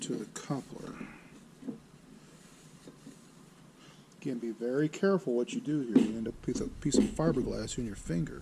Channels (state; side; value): identical; both; correlation 1.00